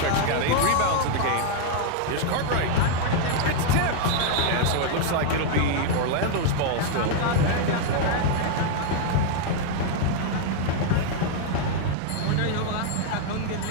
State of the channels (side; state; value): both; different; correlation 0.00